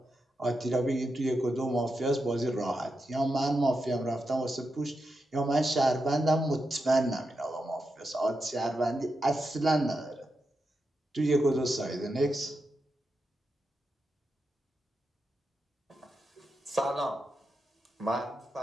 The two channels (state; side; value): normal; both; correlation 0.87